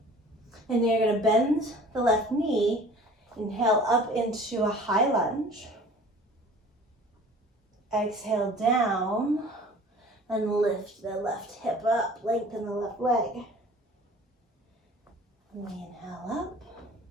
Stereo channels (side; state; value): both; normal; correlation 0.46